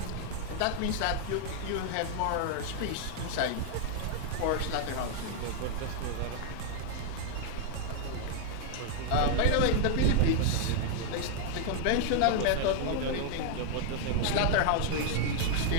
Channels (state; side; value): different; both; correlation -0.01